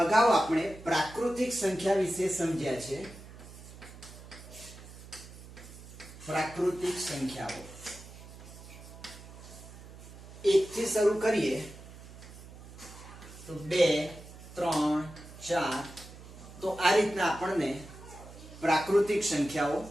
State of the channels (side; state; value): right; noise; hum, 16 dB below the sound